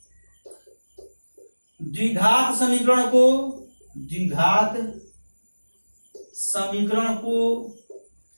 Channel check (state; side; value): inverted; both; correlation -1.00